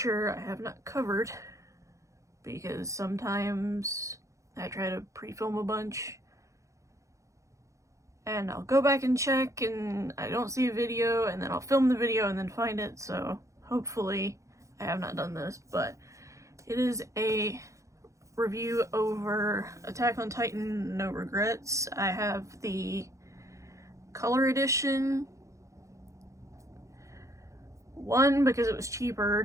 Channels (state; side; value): late; left; 0.15 ms